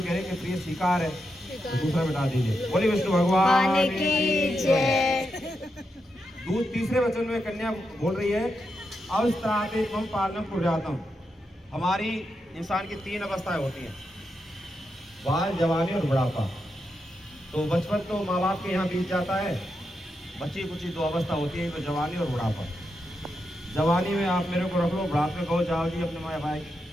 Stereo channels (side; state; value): both; normal; correlation 0.85